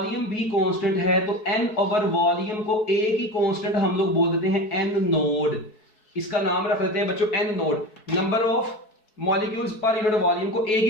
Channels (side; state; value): right; late; 4.6 ms